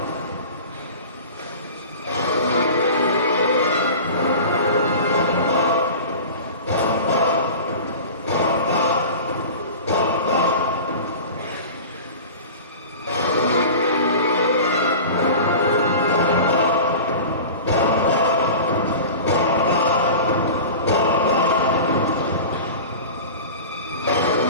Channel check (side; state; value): both; inverted; correlation -0.35